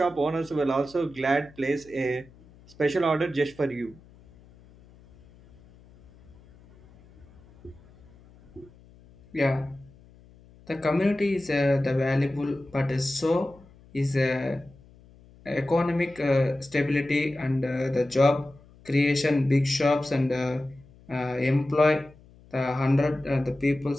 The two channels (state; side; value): noise; left; hum, 25 dB below the sound